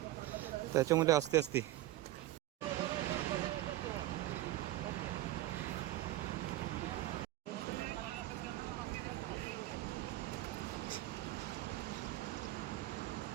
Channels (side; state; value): left; quieter; 15.6 dB